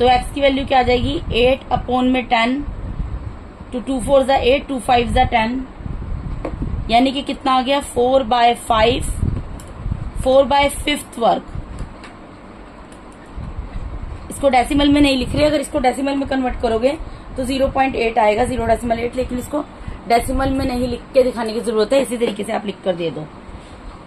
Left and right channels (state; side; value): identical; both; correlation 1.00